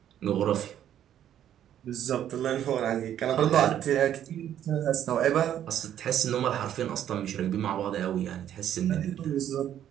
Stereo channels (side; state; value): left; quieter; 10.6 dB